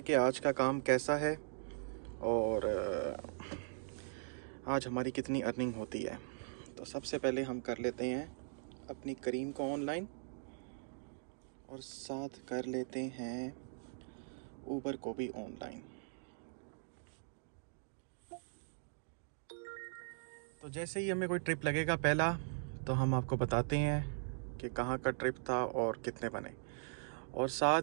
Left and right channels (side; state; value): left; silent; digital silence